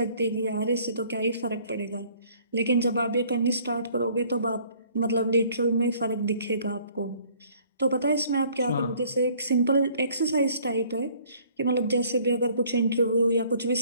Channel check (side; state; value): both; inverted; correlation -0.58